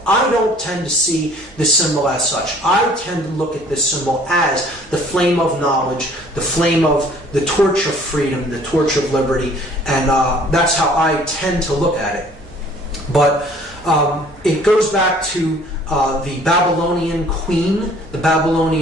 I don't tend to see this symbol as such. I tend to look at this symbol as the flame of knowledge, the flame of the torch of freedom, the torch of liberty, and that's how I tend to look at it. But it goes back to the Babylonian queen, the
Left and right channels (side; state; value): both; normal; correlation 0.55